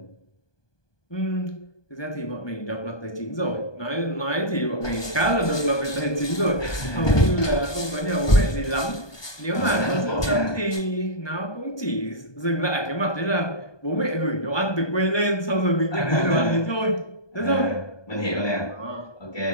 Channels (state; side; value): late; right; 1.2 ms